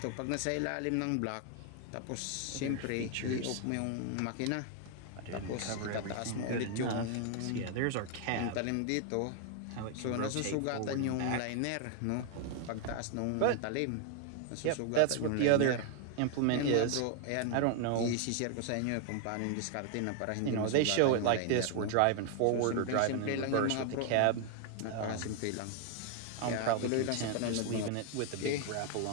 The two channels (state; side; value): different; both; correlation 0.00